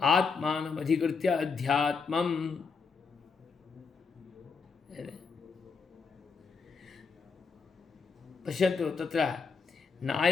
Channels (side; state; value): right; quieter; 5.1 dB